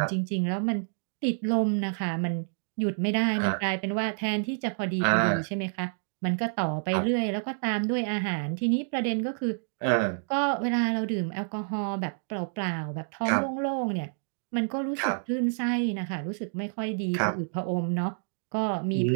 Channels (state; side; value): silent; left; digital silence